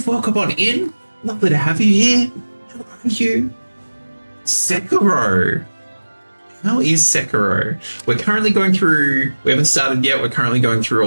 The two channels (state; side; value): inverted; both; correlation -1.00